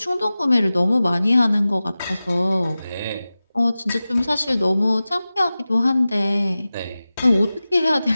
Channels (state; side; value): inverted; both; correlation -0.96